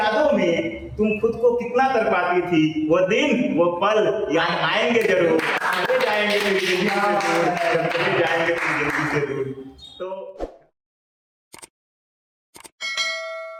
में तुम खुद को कितना तड़पाती थी, वो दिन वो पल याद आएंगे जरूर, चले जाएंगे तेरी जिंदगी से दूर,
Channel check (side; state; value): both; identical; correlation 1.00